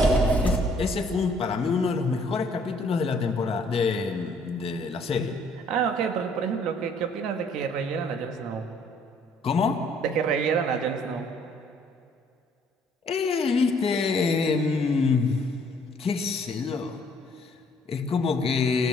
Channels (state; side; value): normal; both; correlation 0.62